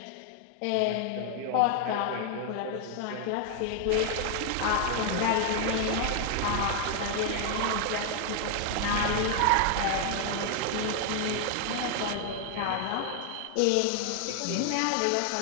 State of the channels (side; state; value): both; different; correlation 0.00